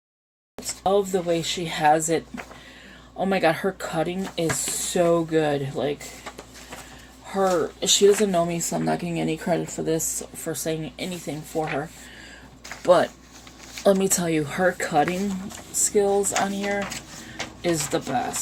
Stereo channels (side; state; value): both; identical; correlation 1.00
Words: I love the way she has it. Oh my god, her cutting is so good. Like, she doesn't know me, so I'm not getting any credit for this, for saying anything for her. But let me tell you, her cutting skills on here is the